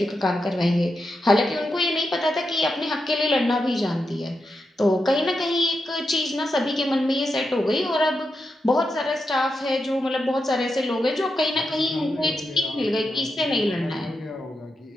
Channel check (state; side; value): normal; both; correlation 0.87